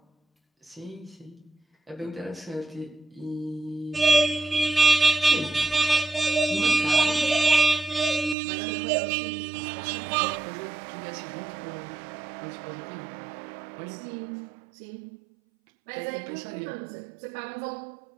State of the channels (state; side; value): drops out; left; at 8.3 s